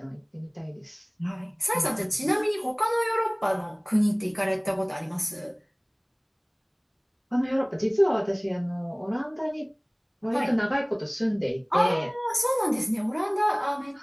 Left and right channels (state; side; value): identical; both; correlation 1.00